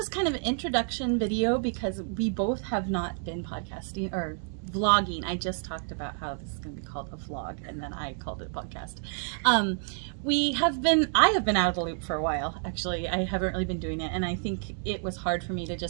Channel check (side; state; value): left; silent; 58 dB below the other